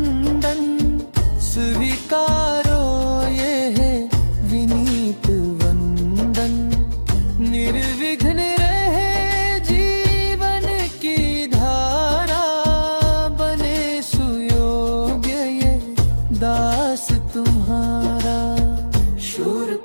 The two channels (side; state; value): both; inverted; correlation -1.00